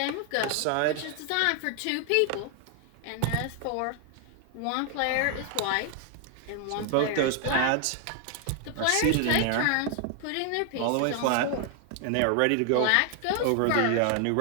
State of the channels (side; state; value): both; different; correlation 0.00